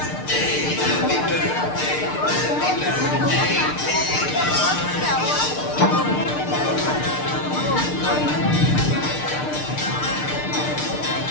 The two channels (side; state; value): right; late; 6.6 ms